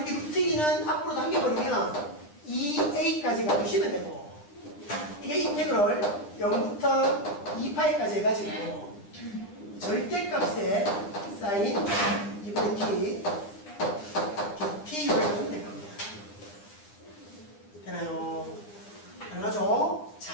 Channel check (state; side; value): late; right; 9.9 ms